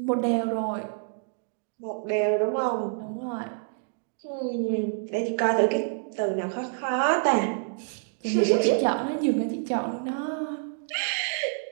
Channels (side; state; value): left; silent; digital silence